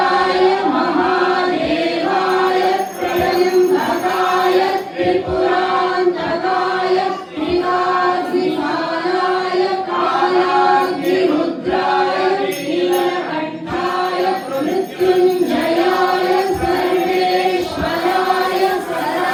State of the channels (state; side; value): identical; both; correlation 1.00